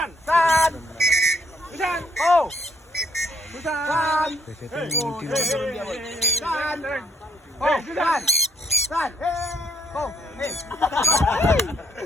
San. Susan. Oh. Susan. Betetnya San. Oh, Susan. San. Oh,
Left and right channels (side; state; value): both; normal; correlation 0.72